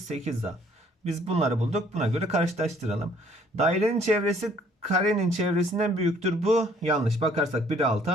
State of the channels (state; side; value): normal; both; correlation 0.61